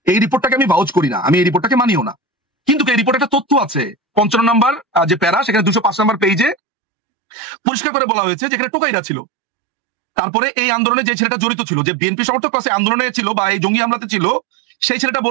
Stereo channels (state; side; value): drops out; left; at 6.6 s